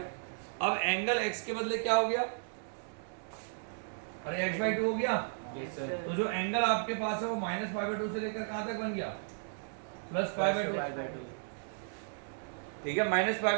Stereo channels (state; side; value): silent; left; digital silence